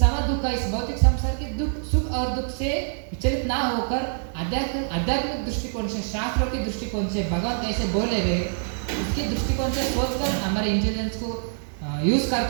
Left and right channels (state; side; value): silent; left; digital silence